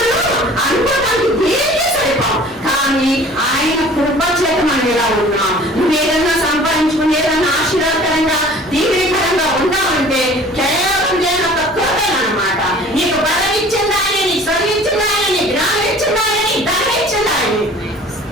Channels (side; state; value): both; normal; correlation 0.48